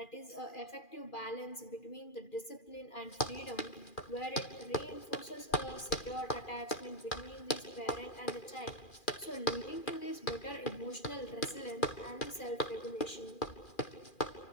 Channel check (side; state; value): right; late; 2.4 ms